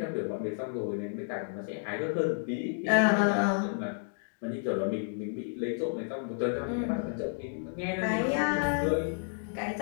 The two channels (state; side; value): silent; right; digital silence